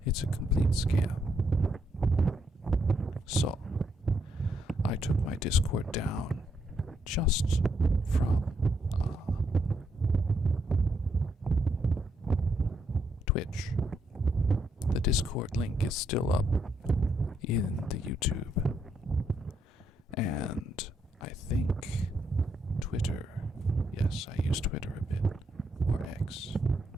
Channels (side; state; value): both; normal; correlation 0.76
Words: It's a complete scam. So, I took my Discord down just from Twitch. The Discord link is still up in the YouTube. And I think Twitter. Yes, I use Twitter a bit. Or X.